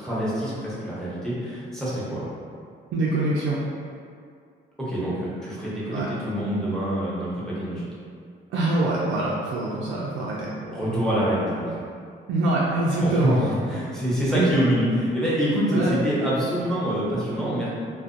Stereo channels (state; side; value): normal; both; correlation 0.59